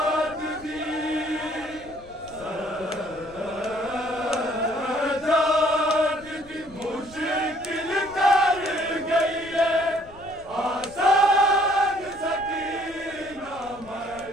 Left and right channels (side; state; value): left; noise; rumble, 22 dB below the sound